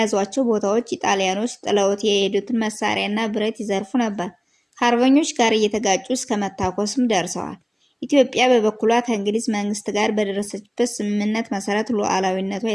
ቦታዎች ኢጣሊያኖች ጥለውት የሄዱትን መሳሪያና ብረት ይዘርፉ ነበር። ከአርበኞች ጋር እየተጋጩ እስከ መታኮስም ደርሰዋል። ኢትዮጵያ በበኩሏ ከእንግሊዝ መንግስት ጋር በደረሰችበት ስምምነት መሰረት ሉዓላዊነቷ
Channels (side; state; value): both; identical; correlation 1.00